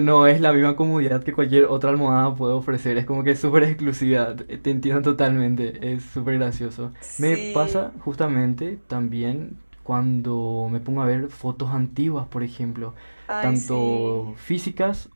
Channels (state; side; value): inverted; both; correlation -1.00